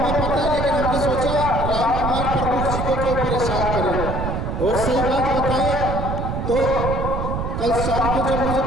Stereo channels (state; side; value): noise; right; rumble, 2 dB below the sound